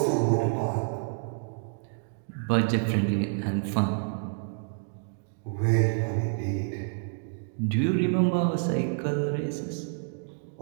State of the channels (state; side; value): silent; left; 59 dB below the other